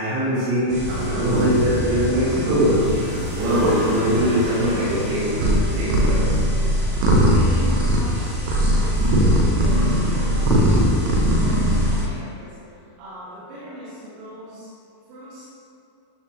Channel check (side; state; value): left; late; 39 ms